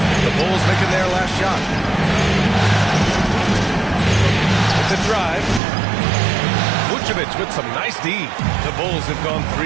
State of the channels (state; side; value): drops out; left; at 5.6 s